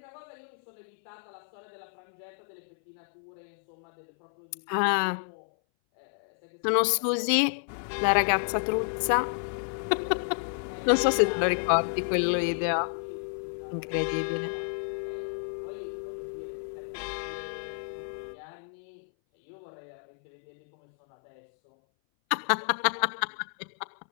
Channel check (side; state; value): right; silent; 57 dB below the other